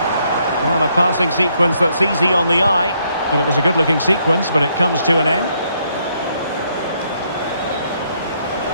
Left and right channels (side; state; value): both; inverted; correlation -0.73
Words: Well, a passing sequence that's easy on the eye. But it was a good-looking sequence, but it comes to an end.